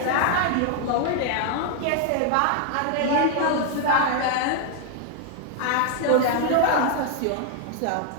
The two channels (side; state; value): both; different; correlation 0.00